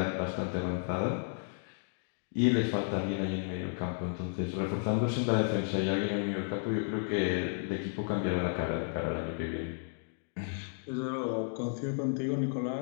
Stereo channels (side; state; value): right; silent; digital silence